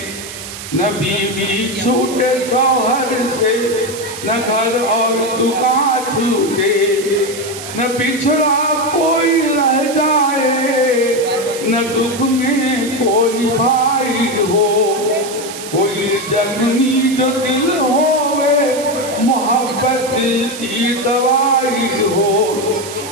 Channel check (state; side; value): noise; right; hiss, 11 dB below the sound